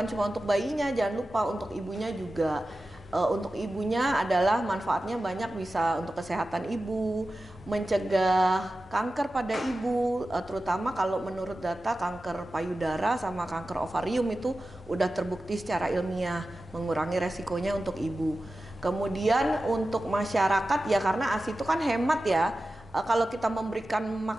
cuma untuk bayinya, jangan lupa untuk ibunya juga. Untuk ibunya adalah manfaatnya banyak, bisa untuk kesehatan ibu, mencegah kanker pada ibu, terutama kalau menurut data kanker payudara sama kanker ovarium itu udah terbukti secara ilmiah mengurangi resikonya untuk ibu. Kemudian untuk masyarakat ya, karena ASI itu kan hemat ya. Kalau kita memberikan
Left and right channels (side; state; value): both; normal; correlation 0.94